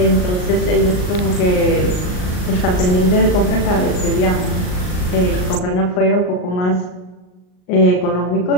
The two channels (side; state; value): right; late; 39 ms